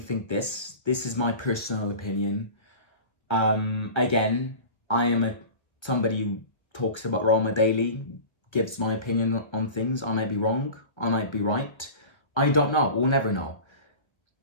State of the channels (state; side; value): late; right; 1.4 ms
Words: this is my personal opinion. Again, I am somebody who talks about Roma daily, gives my opinion on things. I might be wrong, I might be right. I don't know, we'll never know.